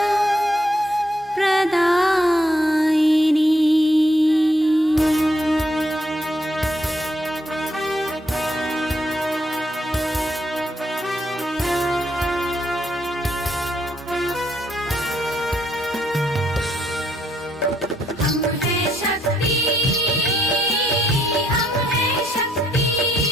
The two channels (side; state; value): both; normal; correlation 0.73